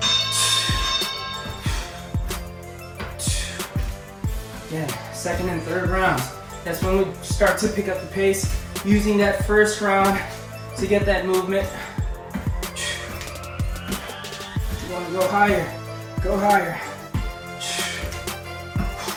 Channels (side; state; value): both; identical; correlation 1.00